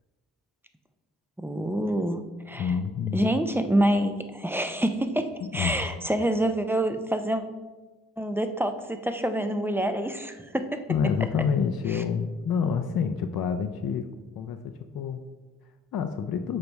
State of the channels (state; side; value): normal; both; correlation 0.69